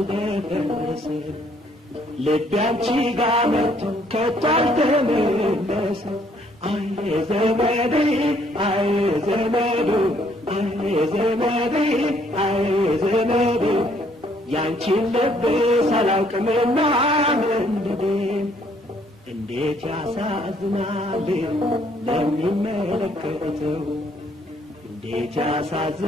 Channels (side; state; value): both; normal; correlation 0.65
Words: ልቤ አንቺ ጋር መጥቶ ከቶ አልተመለሰም አይ ዘመዴ አይ ዘመዱ አይ ዘመዴ አይ ዘመዱ ያንቺን ልብስ አላውቅምና መንደዴ እንዴት ያሳዝናል ለሚመለከተው እንዴት